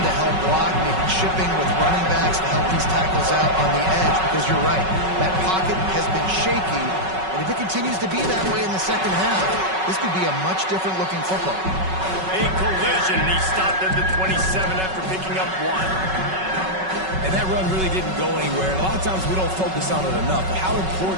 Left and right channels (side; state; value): left; late; 5.3 ms